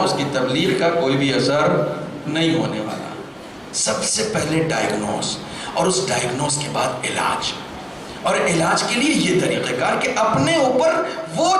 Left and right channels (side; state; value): both; identical; correlation 1.00